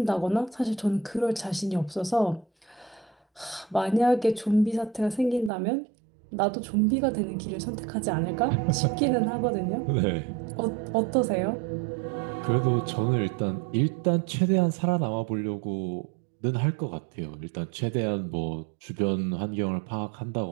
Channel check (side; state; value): left; drops out; at 5.5 s